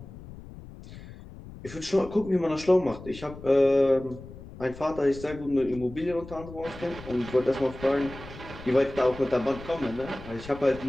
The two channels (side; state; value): left; noise; rumble, 16 dB below the sound